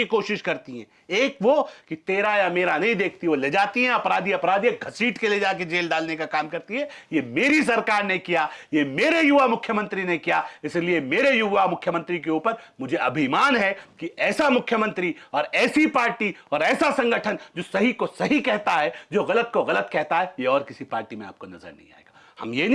कोशिश करती हैं, एक वो कि तेरा या मेरा नहीं देखती, वो ले जाती हैं अपराधी घसीट के ले जाके जेल डालने का काम करती है। ये मेरी सरकार ने किया, ये मेरे युवा मुख्यमंत्री ने किया, इसलिए मेरे युवा मुख्यमंत्री के ऊपर मुझे अभिमान है कि ऐसा मुख्यमंत्री और ऐसी पार्टी और ऐसा संगठन जो सही को सही कहता है, जो गलत को गलत कहता है, ये और किसी पार्टी में आपको नजर नहीं आएगा। हम ये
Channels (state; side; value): identical; both; correlation 1.00